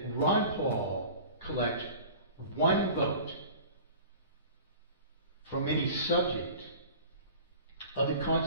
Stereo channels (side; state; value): both; inverted; correlation -0.41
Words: Ron Paul collect one vote from any subject of the